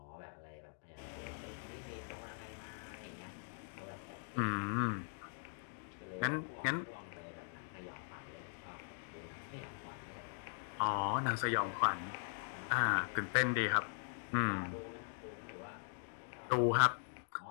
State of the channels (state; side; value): silent; right; digital silence